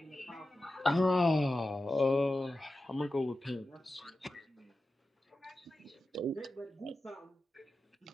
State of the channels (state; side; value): normal; both; correlation 0.93